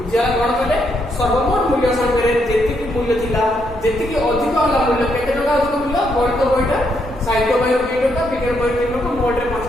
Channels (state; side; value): normal; both; correlation 0.76